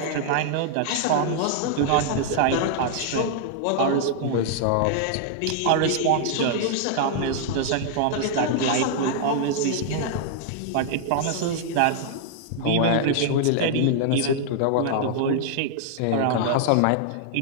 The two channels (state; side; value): different; both; correlation -0.01